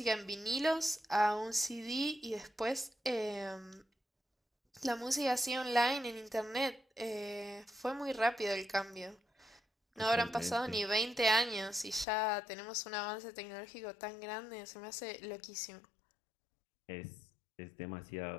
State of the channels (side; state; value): right; drops out; at 12.1 s